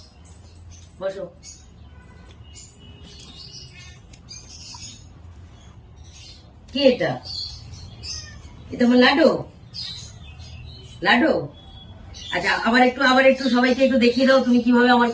বসো। কি এটা? এটা আমার লাডু, লাডু। আচ্ছা আবার একটু সবাইকে একটু দেখিয়ে দাও তুমি কিভাবে আমার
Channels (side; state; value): both; identical; correlation 1.00